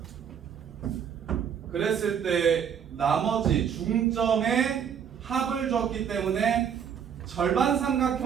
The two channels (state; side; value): quieter; left; 8.0 dB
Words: 그랬을 때 나머지 중점의 합을 줬기 때문에 절반